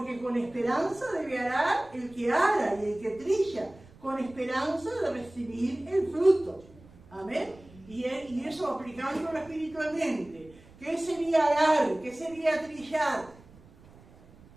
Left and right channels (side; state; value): right; noise; rumble, 24 dB below the sound